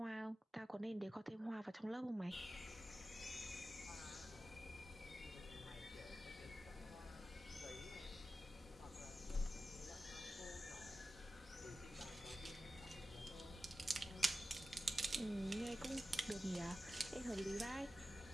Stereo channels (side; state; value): both; normal; correlation 0.94